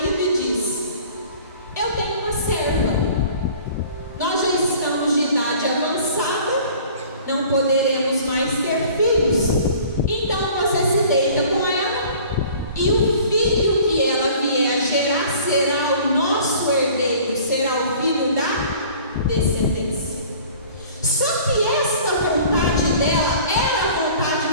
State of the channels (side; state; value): both; inverted; correlation -0.48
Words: e diz: eu tenho uma serva, nós já estamos de idade avançada, não poderemos mais ter filhos, então você se deita com ela e o filho que ela vier a gerar será o nosso herdeiro, será o filho da descendência. Só que esta vontade dela era a vontade